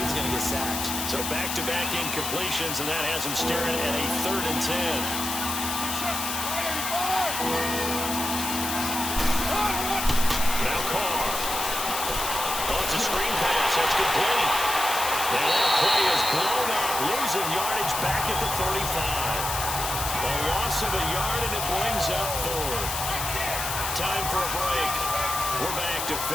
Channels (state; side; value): noise; left; hiss, 3 dB below the sound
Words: was going to get sacked. So back-to-back incompletions, and that has him staring at a 3rd and 10. Now Carr. Oh, it's a screen pass. That's complete. And that play is blown up, losing yardage back at the 35. A loss of a yard, and it brings up 4th. Time for a break. We're back to